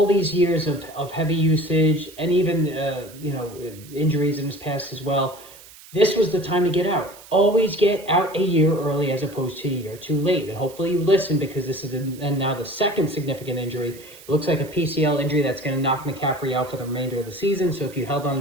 these years of heavy usage, and even injuries in his past as well. This was the time to get out. Always get out a year early as opposed to a year too late. And hopefully you listen, because this is now the second significant injury. It looks like a PCL injury that's going to knock McCaffrey out for the remainder of the season. So if you held on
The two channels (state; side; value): noise; right; hiss, 20 dB below the sound